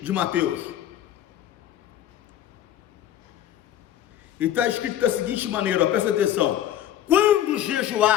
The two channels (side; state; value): right; quieter; 11.5 dB